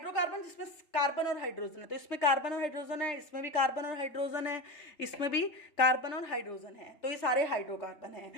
जिसमें कार्बन और हाइड्रोजन है, तो इसमें कार्बन और हाइड्रोजन है, इसमें भी कार्बन और हाइड्रोजन है, इसमें भी कार्बन और हाइड्रोजन है, तो ये सारे हाइड्रोकार्बन हैं।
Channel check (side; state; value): right; late; 3.3 ms